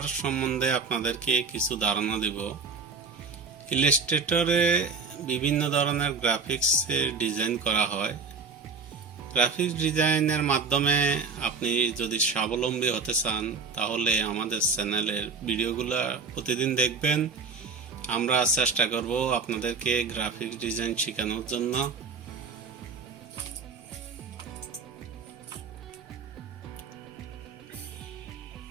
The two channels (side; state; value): left; quieter; 5.0 dB